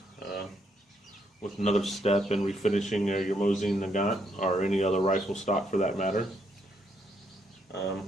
with another step in refinishing your Mosin Nagant or any other rifle stock for that matter.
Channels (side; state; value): both; normal; correlation 0.74